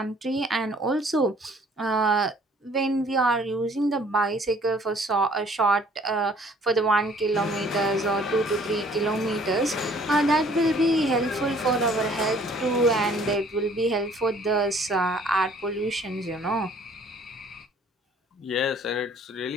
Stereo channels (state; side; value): normal; both; correlation 0.57